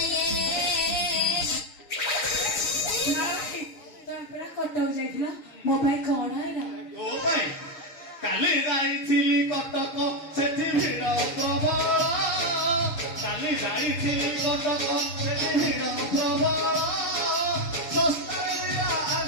କଟକ ଯାଇଥିଲା ମୋ ପାଇଁ କଣ ହେଲା ତୋ ପାଇଁ କାଲି ଯାଇଥିଲି କଟକ ସେଠି ଭିଡ଼ ପ୍ରବଳ କାଲି ଯାଇଥିଲି କଟକ ସେଠି ଭିଡ଼ ପ୍ରବଳ ଶସ୍ତାରେ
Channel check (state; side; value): late; right; 6.1 ms